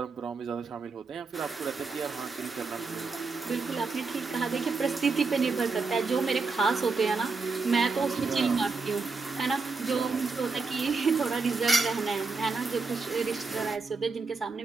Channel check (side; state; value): left; quieter; 4.3 dB